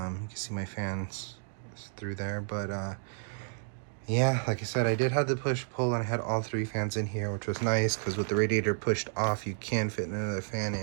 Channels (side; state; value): left; silent; digital silence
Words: see my fans through there, but yeah, like I said, I did have the push-pull and I had all 3 fans in here, which was nice because with the radiator pushed off, you can fit another fan